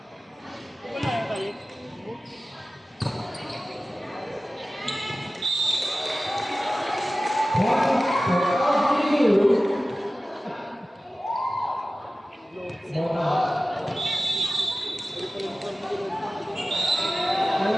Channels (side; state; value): both; normal; correlation 0.96